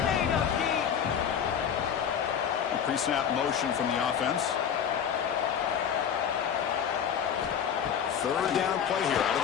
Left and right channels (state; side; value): quieter; right; 8.2 dB